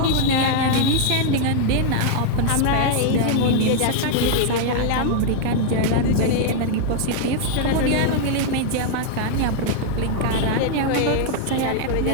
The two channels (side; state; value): both; different; correlation 0.00